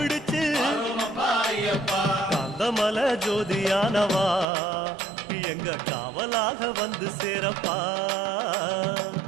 கந்தமலை ஜோதியானவா எங்க காவலாக வந்து சேரப்பா.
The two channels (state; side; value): drops out; left; at 4.5 s